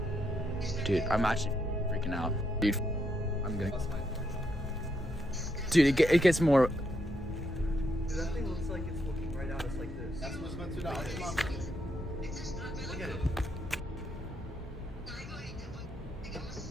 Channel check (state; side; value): noise; left; hum, 16 dB below the sound